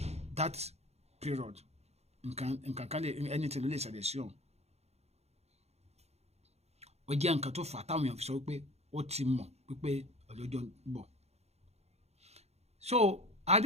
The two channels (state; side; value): late; left; 0.31 ms